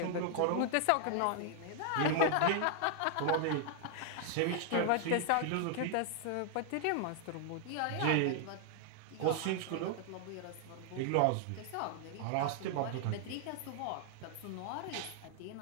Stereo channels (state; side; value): different; both; correlation 0.00